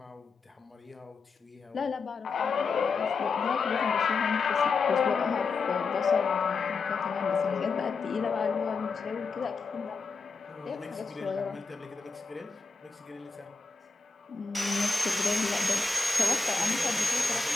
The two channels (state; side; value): quieter; right; 4.4 dB